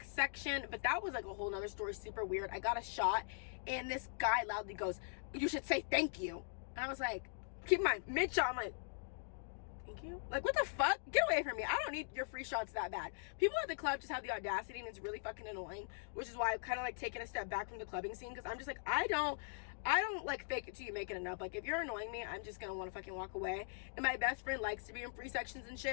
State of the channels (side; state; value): right; silent; digital silence